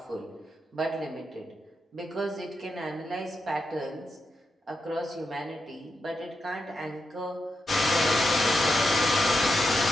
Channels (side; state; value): both; normal; correlation 0.86